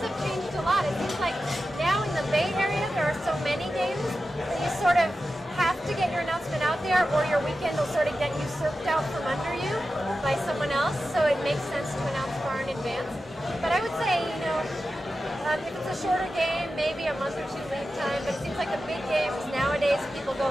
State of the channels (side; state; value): both; normal; correlation 0.92